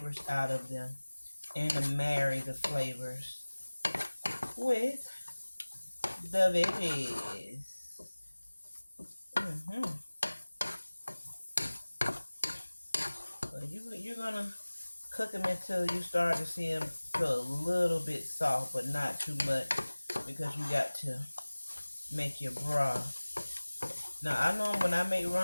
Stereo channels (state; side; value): inverted; both; correlation -1.00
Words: out of them and to marry the flavors with the veggies. So you're gonna cook them until you start to see them feel a little bit soft, but not too much, because you got to make your broth. Now I know when I make